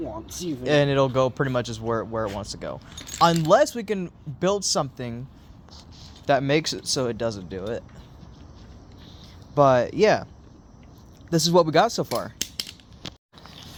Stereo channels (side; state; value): both; identical; correlation 1.00